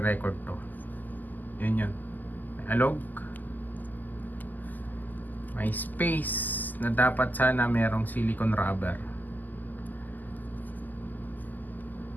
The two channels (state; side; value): late; right; 0.084 ms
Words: to. Yun yun. May alog. May space na dapat sana merong silicone rubber.